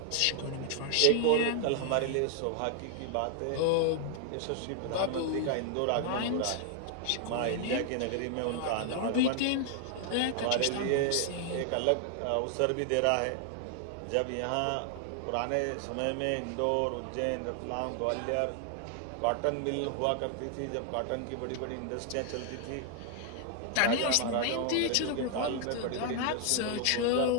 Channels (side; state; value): both; different; correlation 0.00